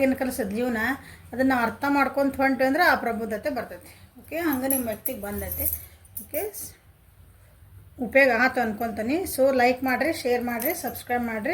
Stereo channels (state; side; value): identical; both; correlation 1.00